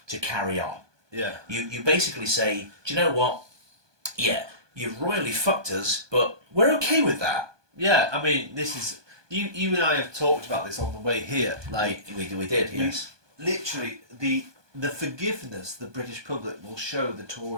to carry on. Yeah. You basically say, do you know what? Yeah, you've royally fucked us, but we're okay with that. Yeah, I mean, this is... You and I have talked about this on the way here. Like we did, yes. Literally, the forgiveness the British public will show the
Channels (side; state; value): left; late; 1.2 ms